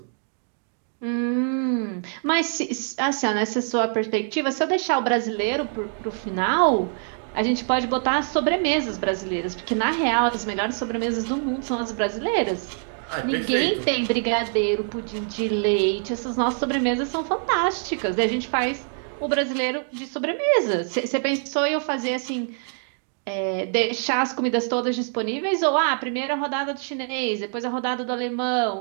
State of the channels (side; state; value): left; silent; 59 dB below the other